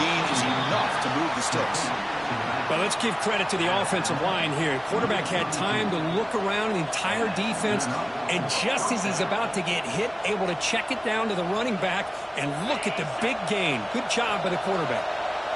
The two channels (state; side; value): identical; both; correlation 1.00